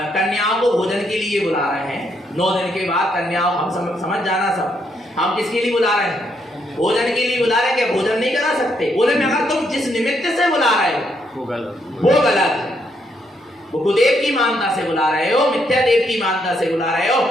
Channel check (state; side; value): normal; both; correlation 0.75